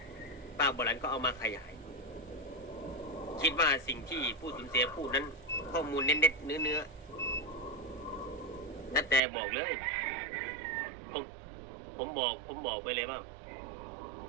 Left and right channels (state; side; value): drops out; left; at 9.2 s